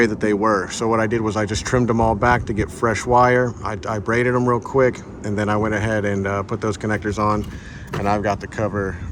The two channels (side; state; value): both; identical; correlation 1.00